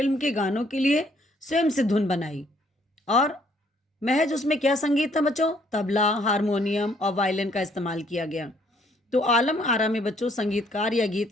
के गानों के लिए स्वयं से धुन बनाई और महज उसमें क्या संगीत था बच्चों? तबला, हारमोनियम और वायलिन का इस्तेमाल किया गया। तो आलम आरा में बच्चों संगीतकार या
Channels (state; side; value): normal; both; correlation 0.65